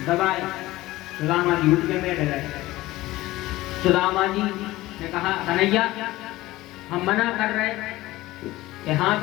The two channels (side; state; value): right; quieter; 17.7 dB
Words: दबाए सुदामा जी उठ के बैठ गए। सुदामा जी ने कहा कन्हैया हम मना कर रहे कि हाथ